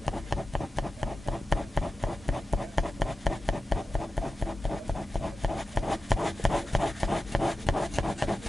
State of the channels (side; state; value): both; normal; correlation 0.94